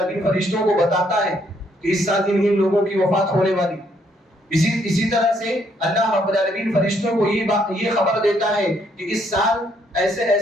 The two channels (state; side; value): normal; both; correlation 0.70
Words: فرشتوں کو بتاتا ہے کہ اس سال ان لوگوں کی وفات ہونے والی. اسی طرح سے اللہ رب العالمین فرشتوں کو یہ خبر دیتا ہے کہ اس سال ایسے